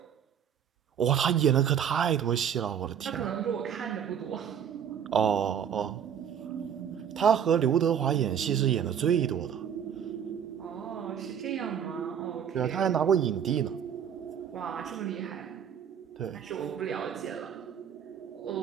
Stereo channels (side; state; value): left; quieter; 8.4 dB